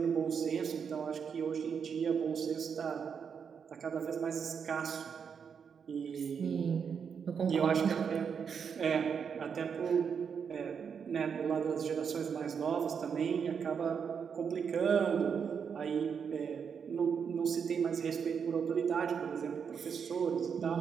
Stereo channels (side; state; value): left; quieter; 6.8 dB